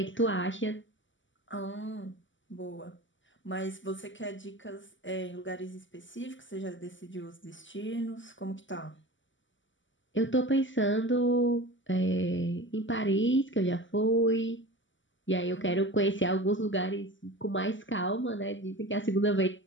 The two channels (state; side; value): late; right; 0.55 ms